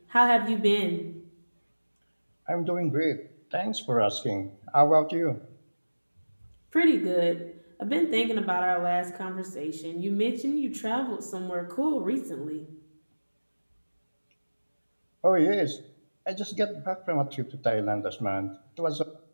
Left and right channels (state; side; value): inverted; both; correlation -1.00